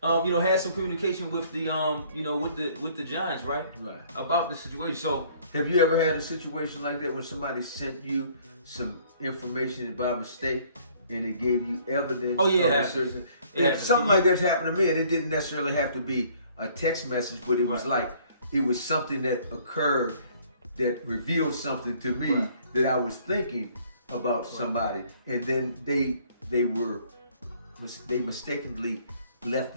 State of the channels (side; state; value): both; inverted; correlation -0.59